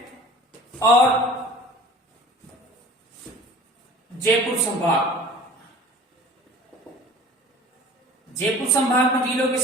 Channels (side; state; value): both; normal; correlation 0.43